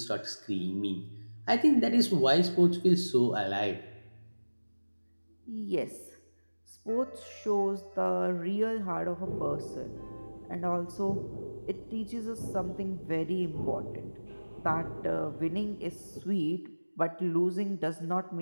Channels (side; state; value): both; inverted; correlation -1.00